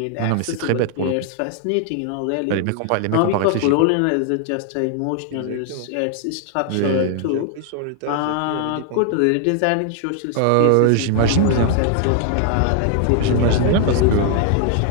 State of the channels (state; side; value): different; both; correlation 0.00